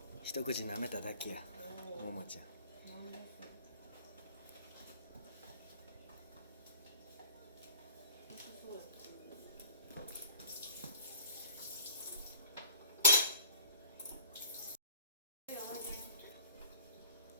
一口舐めただけや。ももちゃん。なんでそうや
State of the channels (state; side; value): inverted; both; correlation -0.46